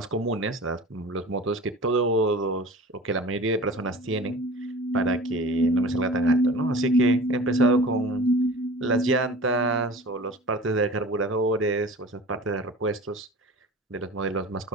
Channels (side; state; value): both; normal; correlation 0.39